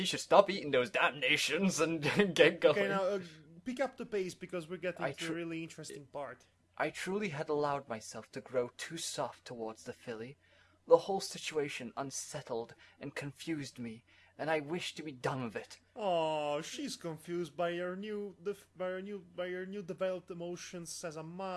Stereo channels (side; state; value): both; identical; correlation 1.00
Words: should stop eating those damnations and get going. Okay, now pick up the pace because we're getting to a really interesting part. I truly had allowed myself to grow too soft towards the filly. The whole situation unsettled and confused me, and I wished to be done with it. Oh, she's confused by your new developed emotions as a